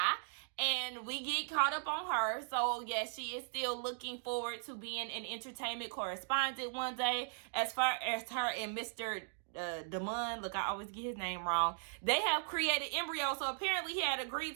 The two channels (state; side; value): silent; left; digital silence